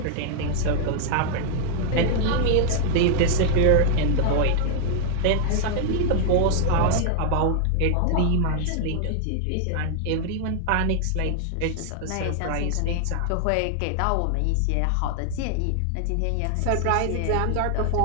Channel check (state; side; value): different; both; correlation 0.00